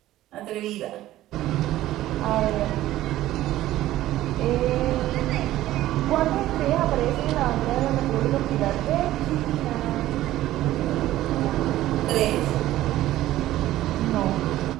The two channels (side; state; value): left; quieter; 14.7 dB